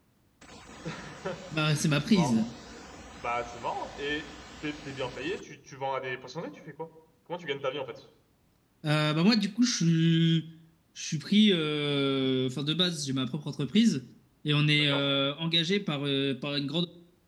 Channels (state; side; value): identical; both; correlation 1.00